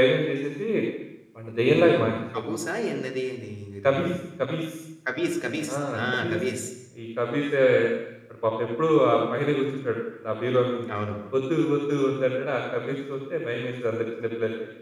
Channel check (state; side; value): identical; both; correlation 1.00